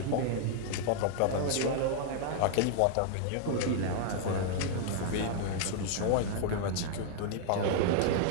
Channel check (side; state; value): both; different; correlation -0.01